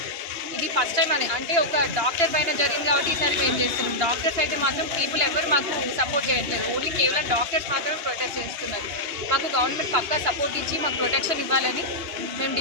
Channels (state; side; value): late; left; 2.9 ms